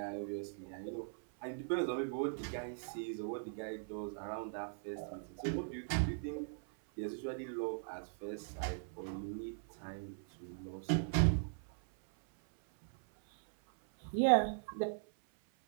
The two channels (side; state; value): left; silent; 51 dB below the other